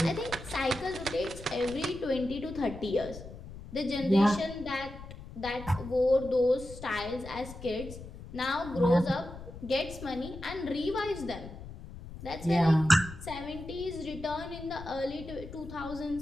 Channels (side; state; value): left; noise; rumble, 13 dB below the sound